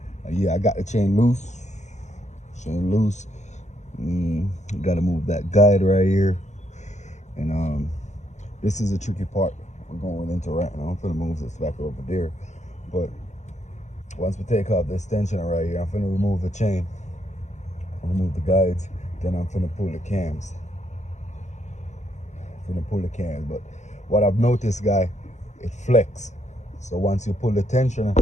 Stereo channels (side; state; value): right; late; 0.34 ms